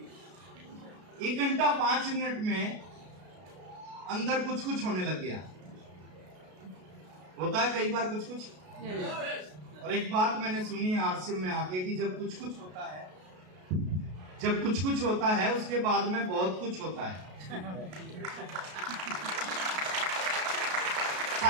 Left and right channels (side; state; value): left; late; 33 ms